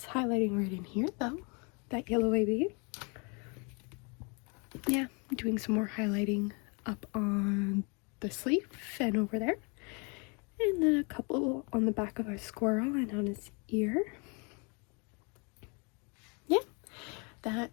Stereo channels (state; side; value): quieter; right; 33.2 dB